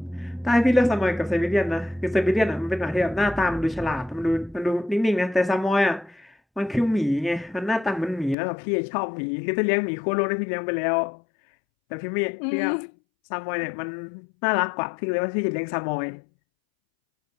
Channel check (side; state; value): right; drops out; at 8.3 s